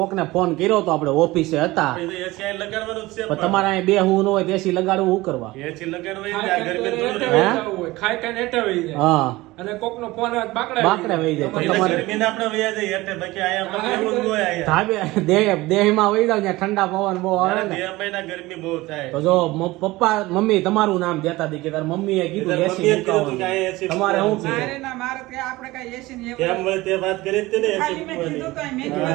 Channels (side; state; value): left; quieter; 19.7 dB